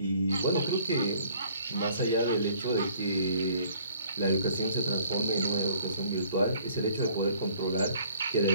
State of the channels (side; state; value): both; inverted; correlation -0.57